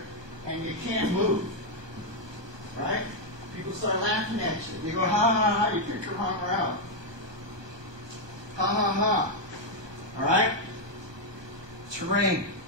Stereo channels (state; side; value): late; left; 1.2 ms